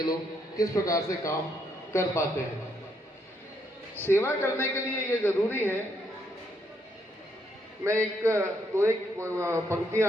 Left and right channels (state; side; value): normal; both; correlation 0.75